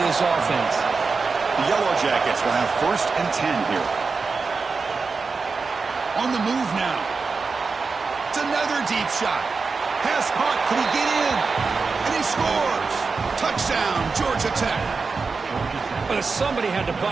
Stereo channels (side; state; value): left; quieter; 4.6 dB